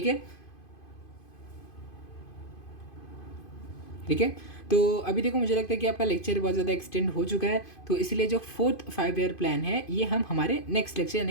है। ठीक है, तो अभी देखो मुझे लगता है कि आपका लेक्चर बहुत ज़्यादा एक्सटेंड हो चुका है, तो इसलिए जो फोर्थ 5 ईयर प्लान है ये हम हमारे नेक्स्ट लेक्चर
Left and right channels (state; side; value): late; right; 2.5 ms